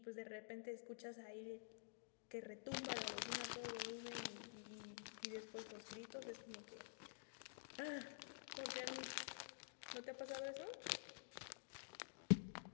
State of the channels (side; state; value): right; silent; digital silence